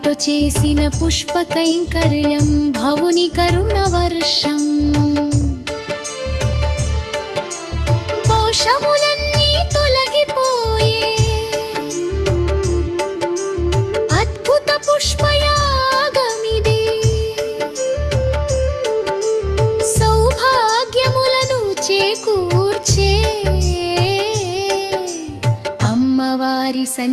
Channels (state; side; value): identical; both; correlation 1.00